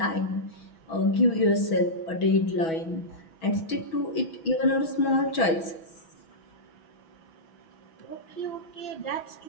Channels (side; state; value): right; late; 6.1 ms